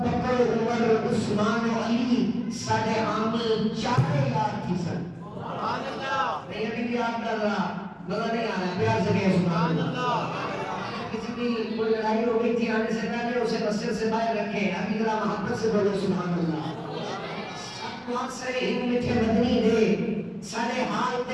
بکر عمر عثمان و علی، ساڑے حامی چارے یار چیسن. نہیں ابھی بھی یاد کر رہا، مزہ نہیں آ رہا، پیار سے کہے سبحان اللہ. کسی کی کوئی لڑائی ہو گئی تھی آنے سے پہلے اسے مسجد سے باہر رکھے، ابھی ذرا محبت سے بولو سبحان اللہ. سب واسرے ہند مٹھے مدنی دے، ساڑے حال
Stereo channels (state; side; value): identical; both; correlation 1.00